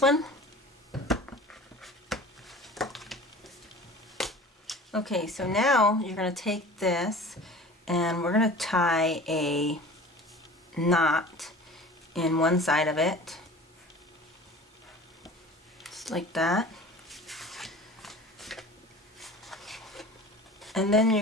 one. Okay, so now you're going to take this and we're going to tie a knot in one side of it. Just like that. And then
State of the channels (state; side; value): normal; both; correlation 0.41